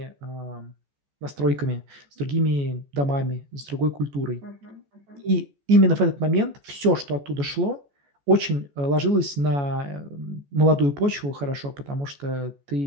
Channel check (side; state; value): left; late; 14 ms